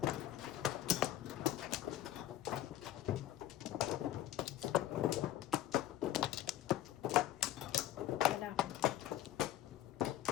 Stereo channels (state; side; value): quieter; right; 13.2 dB